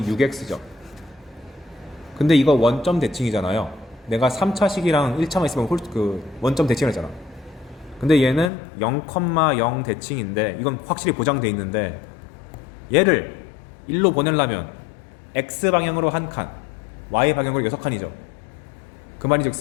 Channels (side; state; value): right; drops out; at 8.5 s